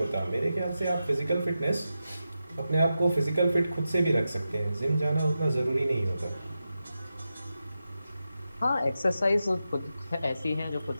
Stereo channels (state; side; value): inverted; both; correlation -0.90